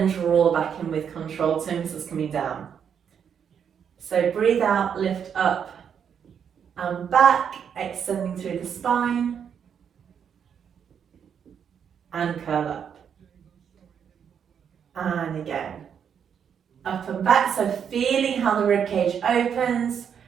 draw back in with control, toe muscles coming down. So breathe out, lift up and back, extending through the spine, and curl up. And again, up and back, so feeling how the ribcage opens,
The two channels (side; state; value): left; quieter; 7.8 dB